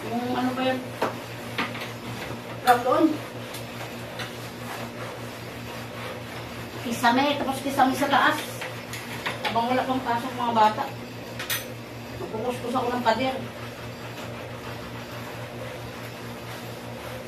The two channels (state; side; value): identical; both; correlation 1.00